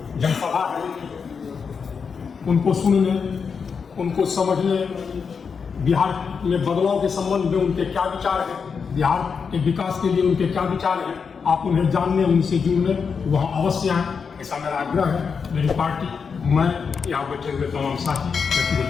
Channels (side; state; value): right; quieter; 5.9 dB